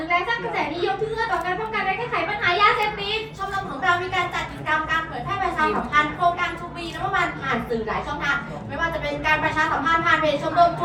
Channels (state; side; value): identical; both; correlation 1.00